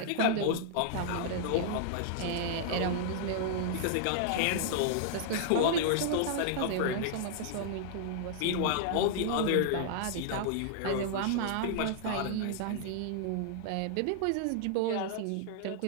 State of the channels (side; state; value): both; different; correlation -0.01